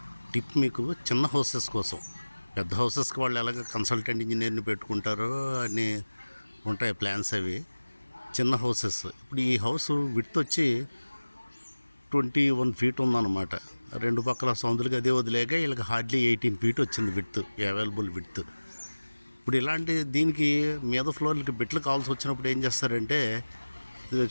టిప్ మీకు, చిన్న హౌసెస్ కోసం. పెద్ద హౌసెస్కి వాళ్ళు ఎలాగ కన్సల్టెంట్ ఇంజనీర్ని పెట్టుకుంటారో అని ఉంటాయి ప్లాన్స్ అవి. చిన్న హౌసెస్, ఇప్పుడు ఈ హౌస్ విడ్త్ వచ్చి 21 ఫీట్ ఉందన్నమాట. రెండు పక్కల సౌందులకి అదే వదిలేక వీళ్ళకి హార్డ్లీ 18 ఫీట్ వచ్చింది విడ్త్, అవైలబుల్ విడ్త్. ఇప్పుడు ఇలాంటి దీనికి మీద ఫ్లోర్లకి బిట్లు కావాల్సి వచ్చినప్పుడు ఏం చేస్తారంటే, ఇది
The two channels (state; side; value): inverted; both; correlation -1.00